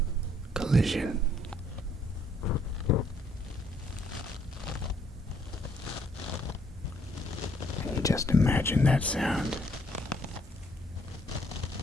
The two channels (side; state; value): both; normal; correlation 0.67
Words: collision? Can you just imagine that sound